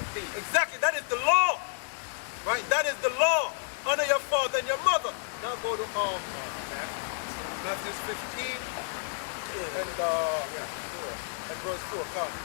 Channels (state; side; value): silent; right; 58 dB below the other